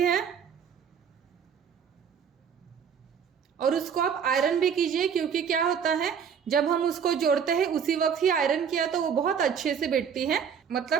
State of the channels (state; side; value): quieter; left; 7.3 dB